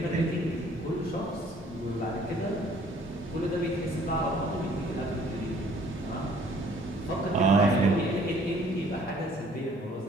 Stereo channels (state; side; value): normal; both; correlation 0.58